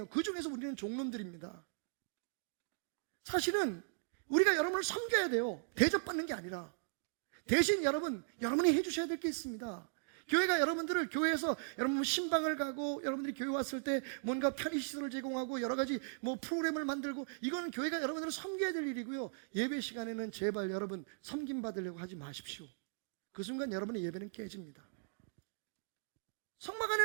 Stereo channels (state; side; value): silent; left; digital silence